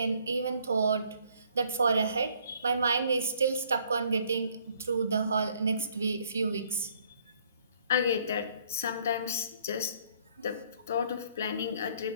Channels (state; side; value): inverted; both; correlation -0.63